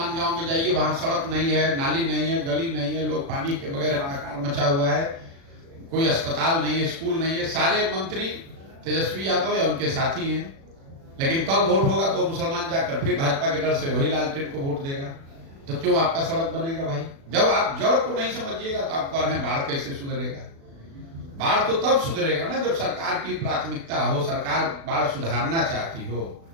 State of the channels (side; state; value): left; late; 36 ms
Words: गांव में जाइए, वहां सड़क नहीं है, नाली नहीं है, गली नहीं है, लोग पानी के बगैर हाहाकार मचा हुआ है, कोई अस्पताल नहीं है, स्कूल नहीं है। सारे मंत्री तेजस्वी यादव या उनके साथी हैं, लेकिन कल वोट होगा तो मुसलमान जाकर फिर भाजपा के डर से वही लालटेन को वोट देगा। तो क्यों आपका सड़क बनेगा भाई? जब आप जड़ को नहीं समझिएगा तो आप कह रहे हैं बाढ़ कैसे सुधरेगा? बाढ़ तो तब सुधरेगा ना जब सरकार की प्राथमिकता हो, सरकार बाढ़ सुधारना चाहती हो।